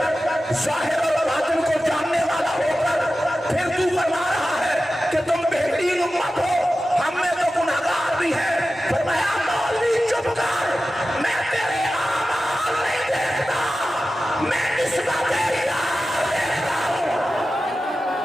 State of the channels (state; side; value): normal; both; correlation 0.94